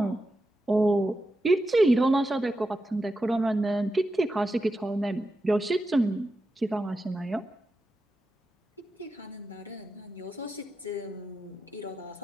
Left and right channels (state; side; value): normal; both; correlation 0.89